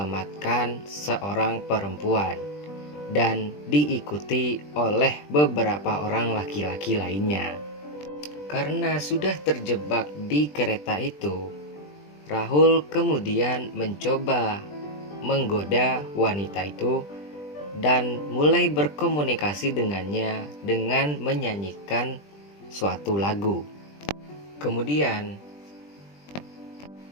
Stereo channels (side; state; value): right; late; 20 ms